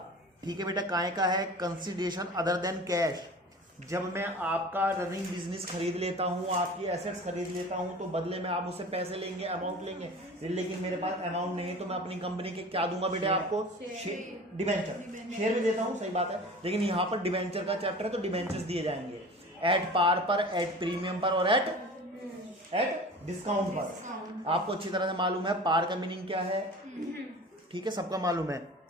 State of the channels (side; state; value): both; normal; correlation 0.39